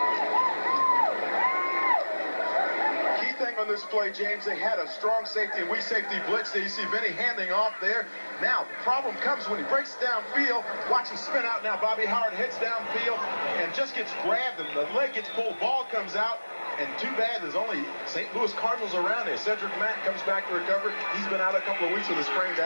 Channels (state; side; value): inverted; both; correlation -1.00